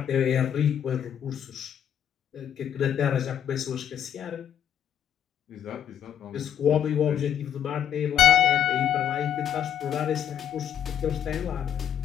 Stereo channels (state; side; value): quieter; right; 9.6 dB